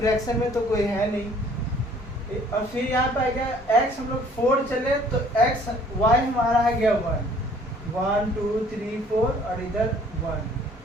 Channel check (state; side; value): normal; both; correlation 0.56